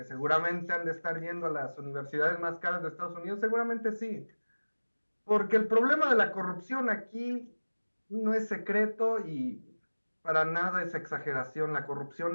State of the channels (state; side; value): inverted; both; correlation -1.00